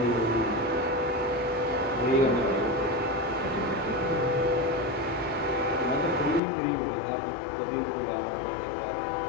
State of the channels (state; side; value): drops out; right; at 6.4 s